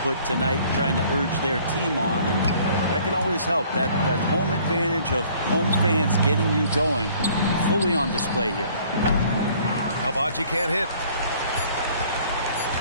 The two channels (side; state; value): both; inverted; correlation -0.57